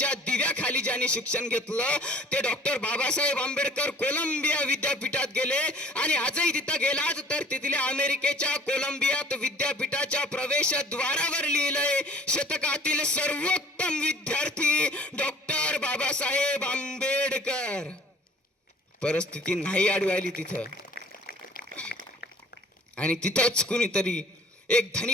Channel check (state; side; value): normal; both; correlation 0.50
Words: दिव्याखाली ज्यांनी शिक्षण घेतलं ते डॉक्टर बाबासाहेब आंबेडकर कोलंबिया विद्यापीठात गेले आणि आजही तिथं गेलात तर तिथल्या अमेरिकेच्या कोलंबियात विद्यापीठाच्या प्रवेशद्वारावर लिहिलंय शतकातील सर्वोत्तम विद्यार्थी डॉक्टर बाबासाहेब आंबेडकर. परिस्थिती नाही आडवायली तिथं. आणि तिथंच कुणीतरी एक